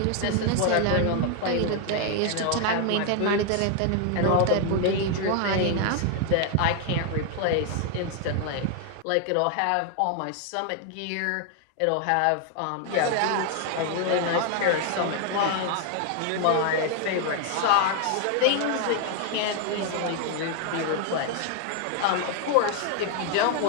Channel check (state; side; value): different; both; correlation 0.00